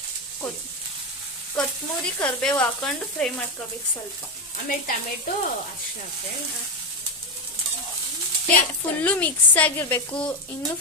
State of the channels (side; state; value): both; normal; correlation 0.10